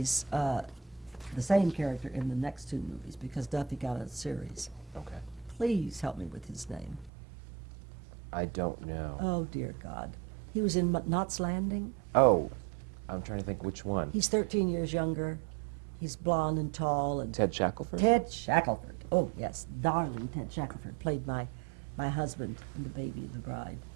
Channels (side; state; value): left; drops out; at 7.1 s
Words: the same character in the next 2 movies because Duffy got a series. Okay. Please help me with his name. I don't know. Oh, dear God. He was in Knots Landing. Oh, I'm trying to think which one. He's 13 years younger. He's blonde and tall. And Ted Shackelford? Ted Shackelford. Oh, yes. Darling Ted Shackelford played my husband in The Baby of the Bride